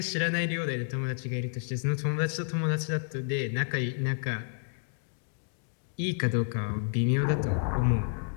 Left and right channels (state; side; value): silent; right; digital silence